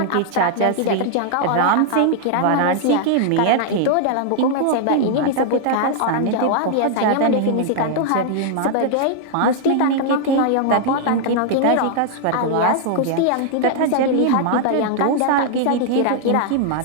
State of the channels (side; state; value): both; different; correlation 0.00